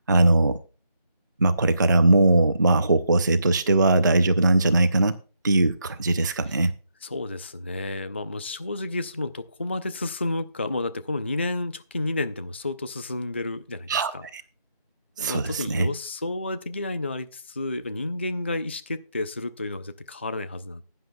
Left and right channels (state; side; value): inverted; both; correlation -0.79